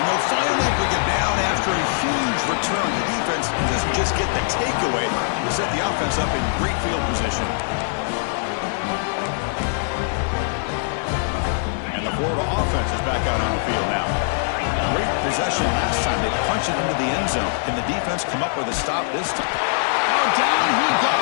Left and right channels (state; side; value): silent; right; digital silence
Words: they'll finally bring him down after a huge return. The defense doesn't just get the takeaway. They set the offense up in great field position. And the Florida offense is back out on the field now. Great possession last time. They punched it into the end zone. Can the defense come up with a stop this time? Now down he